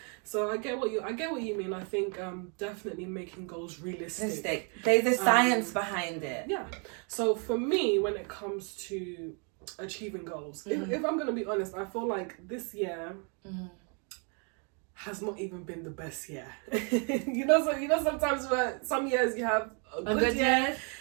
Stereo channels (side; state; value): left; quieter; 37.6 dB